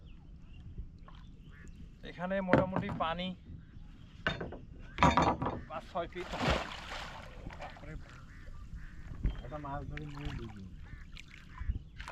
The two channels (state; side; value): identical; both; correlation 1.00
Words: এখানে মোটামুটি পানি 5-6 ফিট।